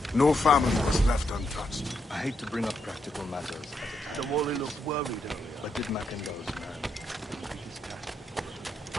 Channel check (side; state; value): both; normal; correlation 0.80